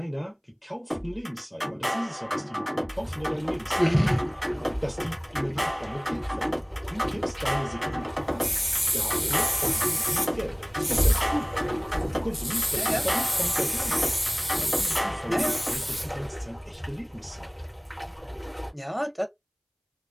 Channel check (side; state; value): both; identical; correlation 1.00